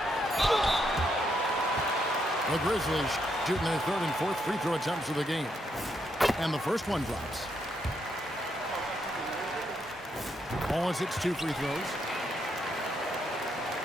The Grizzlies shooting their 3rd and 4th free throw attempts of the game. And the first one drops. Wallace hits 2 free throws.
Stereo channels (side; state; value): both; normal; correlation 0.78